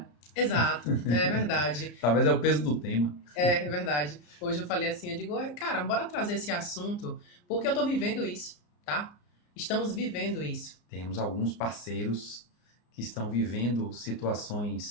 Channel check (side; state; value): right; late; 34 ms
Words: Exato, é verdade. Talvez é o peso do tema. É verdade. Hoje eu falei assim, eu digo, cara, bora trazer esse assunto, porque eu tô vivendo isso, tá? Estamos vivendo isso. Temos alguns parceiros que estão vivendo